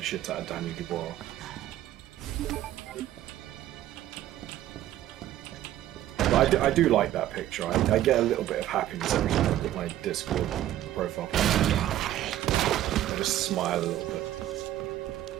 shit out of Daniel Dubois. But I do like that picture. I get a little bit of happiness every time I put my Discord profile picture. I just smile a little bit.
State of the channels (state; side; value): quieter; left; 13.1 dB